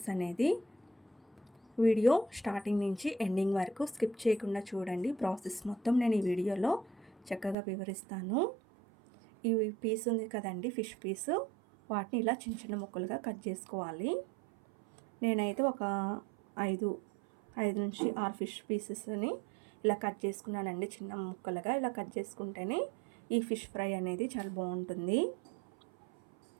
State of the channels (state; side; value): drops out; left; at 7.6 s